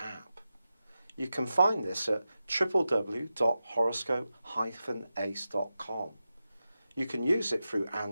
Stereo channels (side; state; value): both; inverted; correlation -0.92